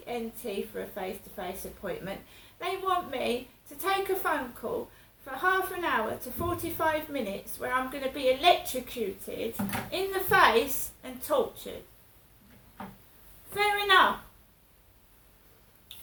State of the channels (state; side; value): identical; both; correlation 1.00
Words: ENT for a face-to-face appointment. They want me to take a phone call for half an hour to 45 minutes where I'm going to be electrocuted in the face and tortured. Fair enough.